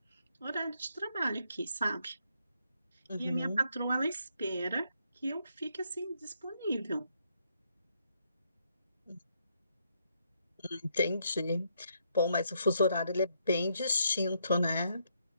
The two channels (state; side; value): inverted; both; correlation -0.75